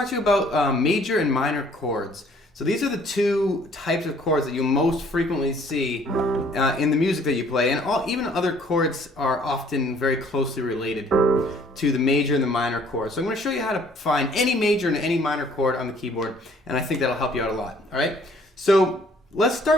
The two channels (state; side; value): normal; both; correlation 0.59